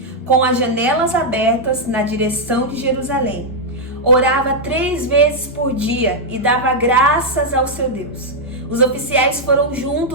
com as janelas abertas na direção de Jerusalém. Orava 3 vezes por dia e dava graças ao seu Deus. Os oficiais foram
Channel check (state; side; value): normal; both; correlation -0.03